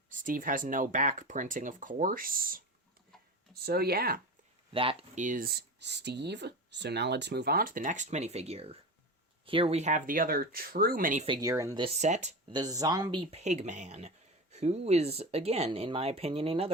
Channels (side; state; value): both; normal; correlation 0.26